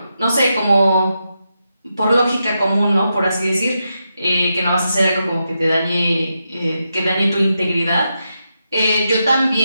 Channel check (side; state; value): both; inverted; correlation -0.86